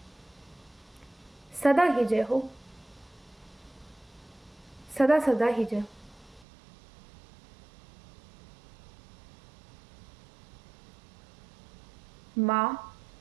सदा ही जय हो, सदा सदा ही जय हो। माँ,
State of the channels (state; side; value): drops out; left; at 6.5 s